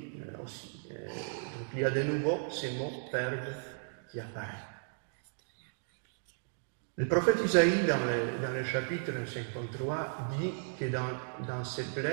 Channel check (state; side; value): silent; left; digital silence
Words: aussi. Donc il y a de nouveau ces mots « perdre » qui apparaissent. Le prophète Isaïe, dans le chapitre 53, dit que dans ces